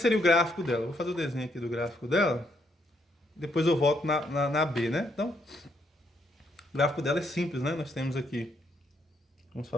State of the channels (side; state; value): both; normal; correlation 0.74